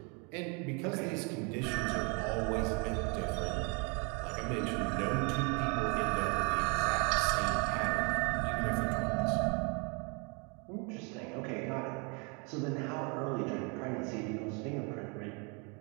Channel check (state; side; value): quieter; left; 33.1 dB